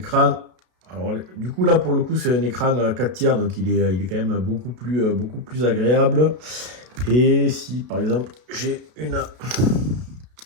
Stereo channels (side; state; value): left; late; 32 ms